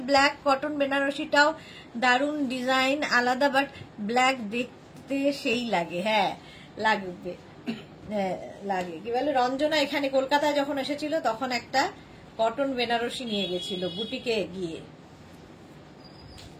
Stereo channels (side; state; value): both; identical; correlation 1.00